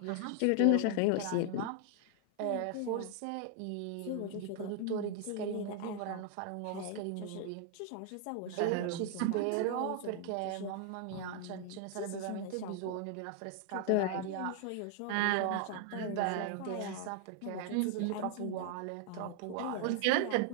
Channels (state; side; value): different; both; correlation 0.00